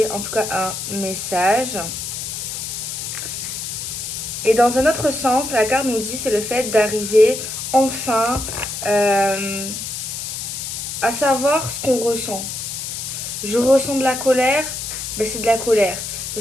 en tout cas un message. Et dans un autre sens, la carte nous dit c'est le fait d'arriver enfin à savoir ce qu'on ressent. Je ressens de la colère, ben c'est de la colère.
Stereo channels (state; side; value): noise; left; hiss, 6 dB below the sound